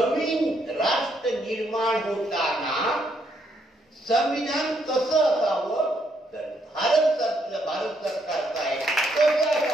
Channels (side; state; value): both; normal; correlation 0.74